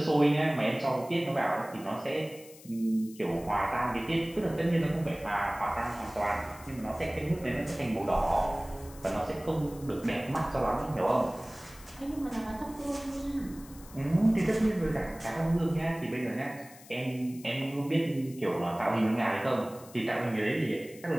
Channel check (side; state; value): left; noise; hiss, 20 dB below the sound